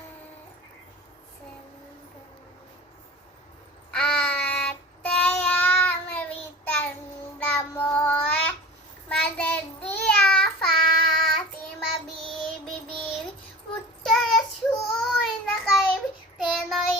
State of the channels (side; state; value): both; normal; correlation 0.37